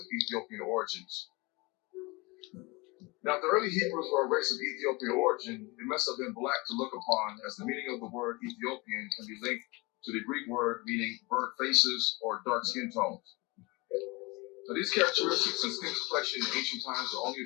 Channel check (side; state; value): right; quieter; 25.3 dB